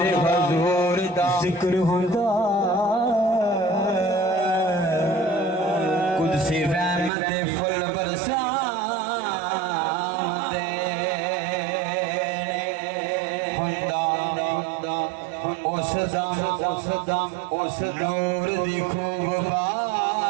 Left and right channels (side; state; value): left; drops out; at 7.1 s